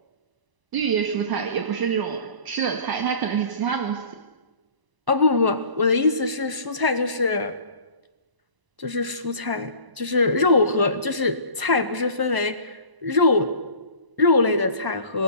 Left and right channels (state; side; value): late; left; 1.0 ms